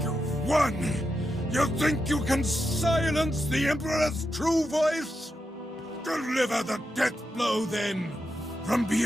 you've won? You think you can silence the Emperor's true voice? Deliver the death blow, then! From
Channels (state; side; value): normal; both; correlation 0.86